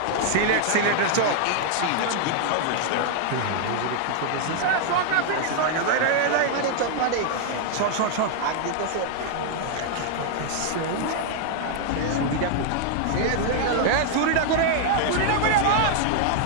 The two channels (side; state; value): both; different; correlation 0.00